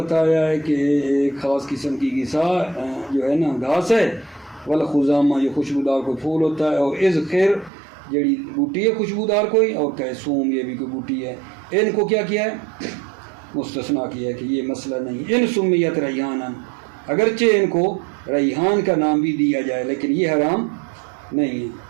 ہے کہ ایک خاص قسم کی غذا جو ہے نا گھاس ہے، والخضامہ یہ خوشبودار کوئی پھول ہوتا ہے، اور ادخر جڑی بوٹی ہے خوشبودار کوئی، اور کہے سوم یہ بھی کوئی بوٹی ہے، ان کو کیا کیا ہے؟ مستثنا کیا ہے کہ یہ مسئلہ نہیں۔ ان سمیت ریحانا، اگرچہ ان کو ریحان کا نام بھی دیا جائے لیکن یہ حرام نہیں ہے۔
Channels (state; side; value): drops out; left; at 7.7 s